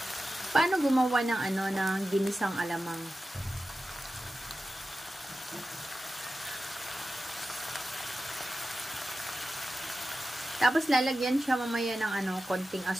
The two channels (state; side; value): normal; both; correlation 0.92